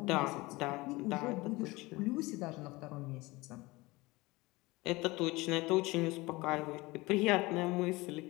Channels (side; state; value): right; quieter; 22.0 dB